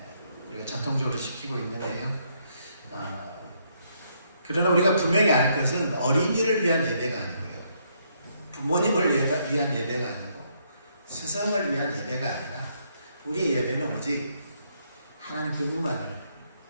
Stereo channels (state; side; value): inverted; both; correlation -0.73